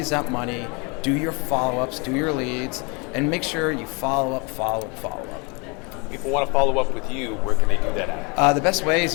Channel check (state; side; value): quieter; right; 30.7 dB